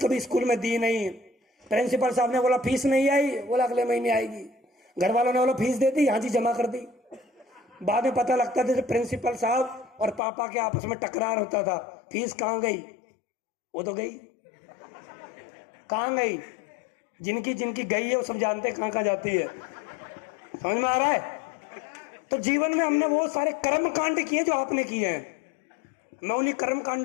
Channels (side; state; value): right; drops out; at 10.2 s